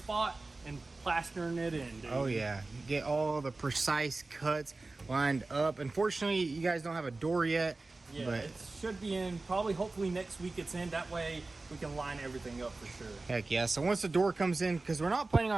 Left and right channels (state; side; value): quieter; left; 3.4 dB